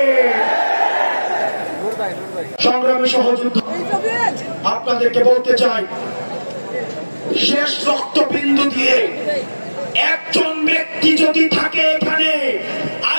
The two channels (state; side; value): inverted; both; correlation -1.00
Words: সংগ্রামী সহযোদ্ধা, আপনাদেরকে বলতে চাই, শেষ রক্তবিন্দু দিয়ে একজন ব্যক্তি যদি থাকে এখানে,